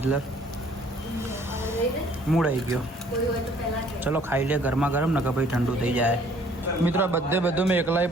મૂડ આવી ગયો ચલો ખાઈ લે ગરમા ગરમ ને કે ભાઈ ઠંડુ થઈ જાય મિત્રો બધું મેં એકલાઈ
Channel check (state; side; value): normal; both; correlation 0.58